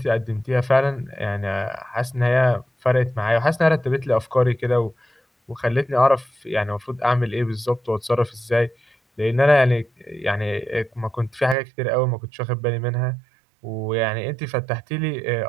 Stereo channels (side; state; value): left; drops out; at 11.6 s